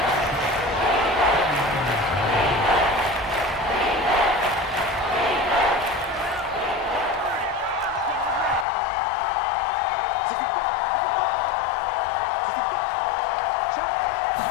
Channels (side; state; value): right; drops out; at 8.7 s